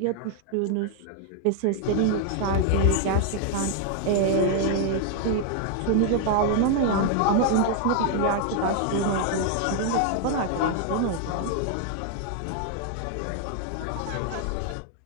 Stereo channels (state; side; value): different; both; correlation 0.00